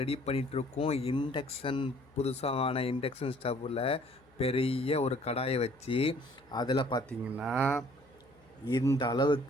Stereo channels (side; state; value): left; noise; hum, 30 dB below the sound